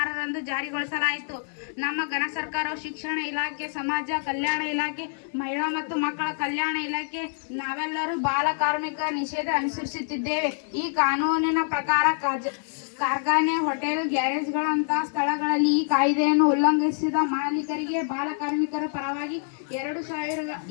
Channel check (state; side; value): silent; right; digital silence